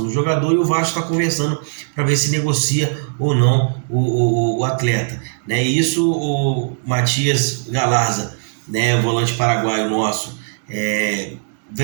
do jogador, e o Vasco está conversando para ver se negocia ou não o atleta, né? E isso o Matias Galarza, né, o volante paraguaio nosso,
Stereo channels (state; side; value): silent; left; digital silence